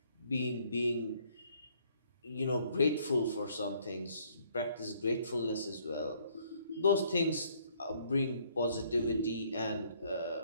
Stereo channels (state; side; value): inverted; both; correlation -0.65